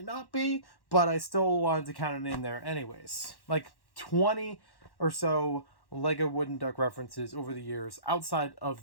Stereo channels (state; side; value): late; right; 1.1 ms